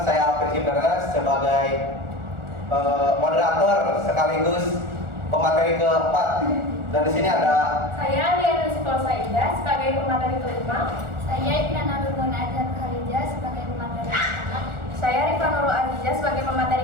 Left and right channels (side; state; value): left; late; 1.4 ms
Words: saya Alfred Cibernas sebagai moderator sekaligus pemateri keempat. Dan di sini ada saya Liana Sipolsa Ida sebagai pemateri kelima. Saya Iknana Nurmuna Azhar Khalija sebagai pemateri pertama. Saya Rifa Nurul Aziza sebagai